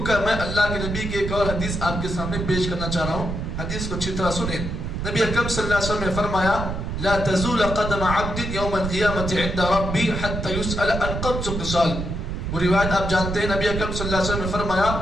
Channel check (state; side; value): noise; right; rumble, 4 dB below the sound